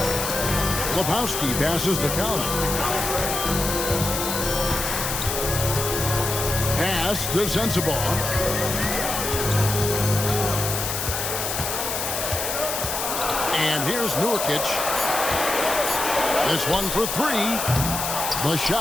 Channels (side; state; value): left; noise; hiss, 3 dB below the sound